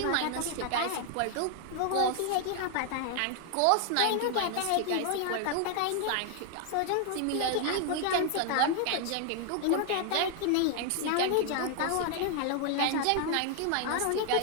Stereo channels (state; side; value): different; both; correlation 0.00